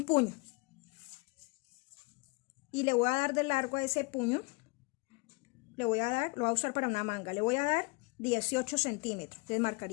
puño. Y le voy a dar de largo a ese puño. Lo voy a usar para una manga. Le voy a dar 18 centímetros. Entonces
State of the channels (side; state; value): right; quieter; 28.5 dB